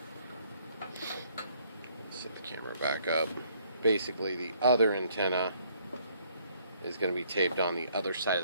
Let's set the camera back up. Basically the other antenna is going to be taped on the other side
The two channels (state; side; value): inverted; both; correlation -0.66